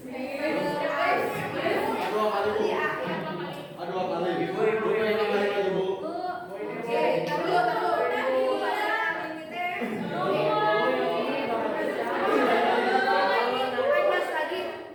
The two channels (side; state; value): both; identical; correlation 1.00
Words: Aduh apa lagi? Bu yang kembali lagi Bu. Oke, taruh.